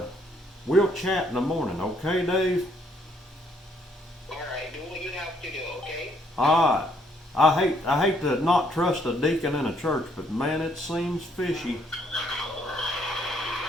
we'll chat in the morning, okay, Dave? Alright, do what you have to do, okay? Alright. I hate to not trust a deacon in a church, but man, it seems fishy.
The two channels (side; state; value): both; normal; correlation 0.68